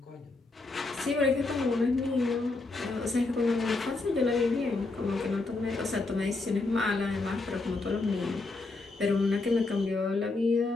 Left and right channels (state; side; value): quieter; right; 3.4 dB